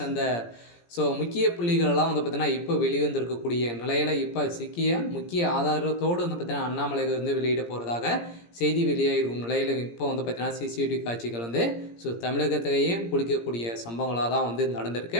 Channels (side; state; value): right; late; 17 ms